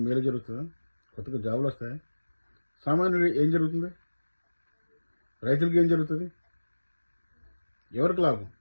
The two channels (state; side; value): inverted; both; correlation -1.00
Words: మేలు జరుగుతుందా? కొత్తగా జాబులు వస్తాయా? సామాన్యుడు ఏం జరుగుతుంది? రైతులకి ఏం జరుగుతుంది? ఎవరికి లాభం?